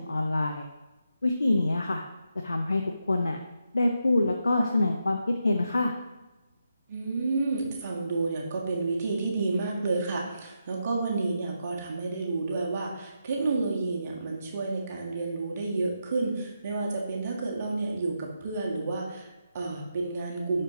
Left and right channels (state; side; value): inverted; both; correlation -0.84